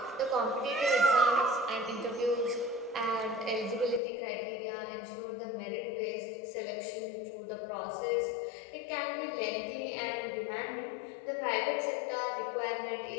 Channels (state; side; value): drops out; right; at 4.0 s